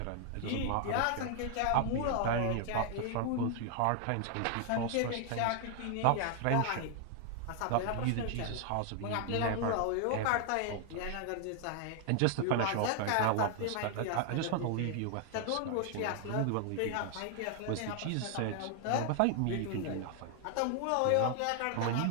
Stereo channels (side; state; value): both; different; correlation 0.00